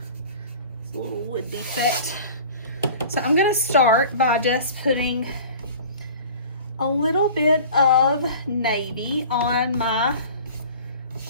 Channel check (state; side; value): inverted; both; correlation -0.43